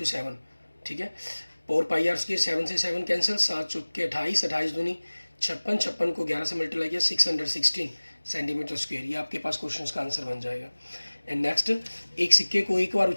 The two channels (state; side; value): inverted; both; correlation -1.00